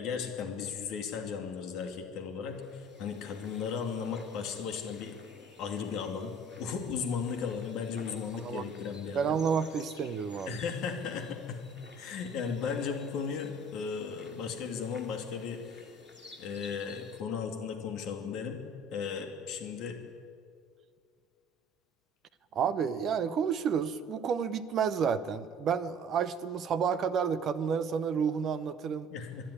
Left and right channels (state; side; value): normal; both; correlation 0.49